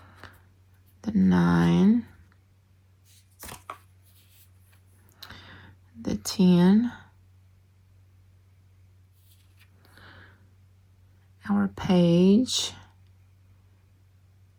The 9. The 10. Our Page.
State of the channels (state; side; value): identical; both; correlation 1.00